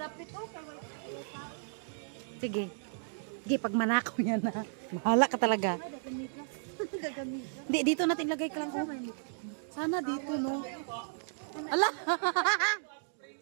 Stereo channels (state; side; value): silent; left; digital silence